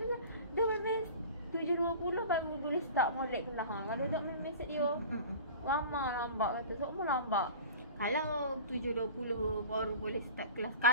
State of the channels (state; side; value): inverted; both; correlation -0.38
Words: tu dia memang 7.20 baru boleh start molek kelas. Kalau tak memang set dia lama lambat kata. Semua lambat. Kalau 7.20 baru boleh start kelas.